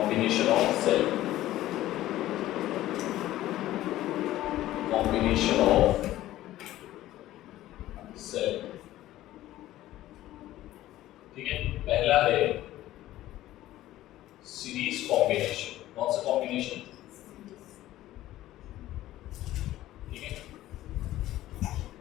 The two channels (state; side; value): quieter; right; 14.8 dB